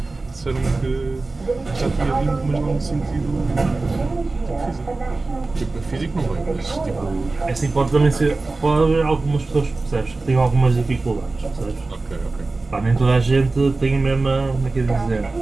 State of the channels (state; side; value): quieter; left; 3.4 dB